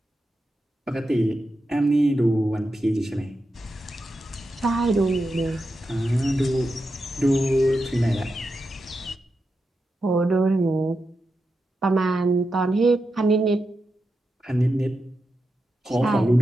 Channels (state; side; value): normal; both; correlation 0.88